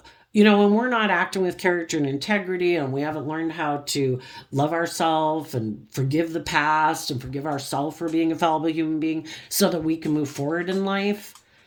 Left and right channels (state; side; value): identical; both; correlation 1.00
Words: when we're not acting with character and integrity and we haven't learned how to love ourselves and forgive the past and forgive ourselves for being a fallible human being so that we can move forward in life,